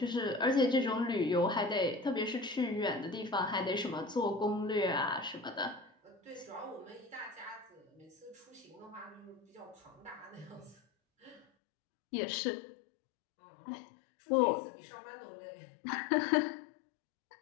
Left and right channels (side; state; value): right; drops out; at 11.5 s